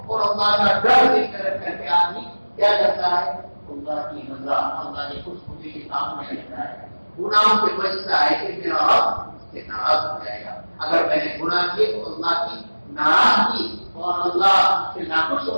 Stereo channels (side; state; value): both; inverted; correlation -1.00